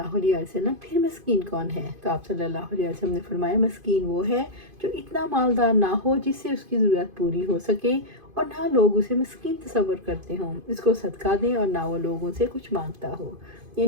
علیہ وسلم پھر مسکین کون ہے؟ تو آپ صلی اللہ علیہ وسلم نے فرمایا مسکین وہ ہے جو اتنا مالدار نہ ہو جس سے اس کی ضرورت پوری ہو سکے اور نہ لوگ اسے مسکین تصور کرتے ہوں، اس کو صدقہ دیں اور نہ وہ لوگوں سے کچھ مانگتا ہو،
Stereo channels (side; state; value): left; late; 2.5 ms